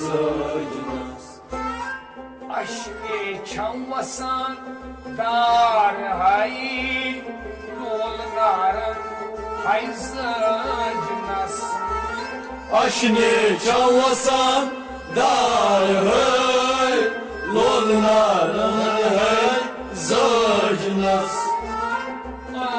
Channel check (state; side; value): identical; both; correlation 1.00